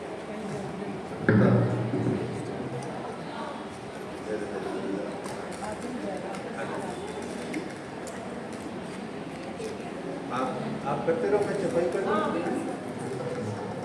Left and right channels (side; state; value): both; identical; correlation 1.00